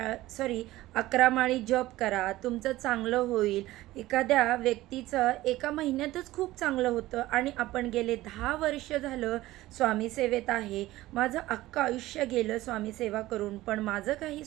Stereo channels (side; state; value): left; quieter; 16.9 dB